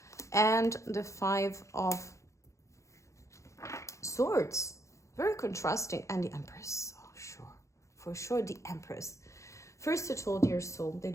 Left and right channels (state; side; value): late; right; 0.15 ms